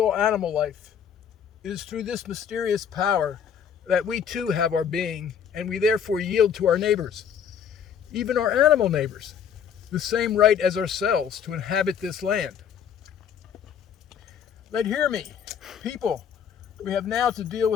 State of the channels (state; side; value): quieter; right; 7.9 dB